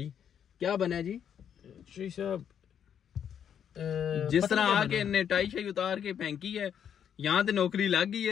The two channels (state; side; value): quieter; right; 8.6 dB